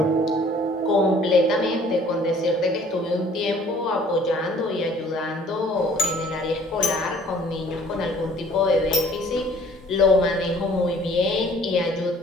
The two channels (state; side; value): normal; both; correlation 0.55